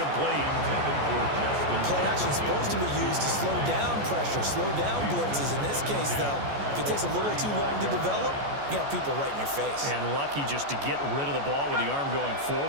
Play action is supposed to be used to slow down pressure, slow down blitzes. In this case, though, if it takes a little too long to develop, you got people right in your face. And lucky just to get rid of the ball with the arm going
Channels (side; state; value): left; late; 14 ms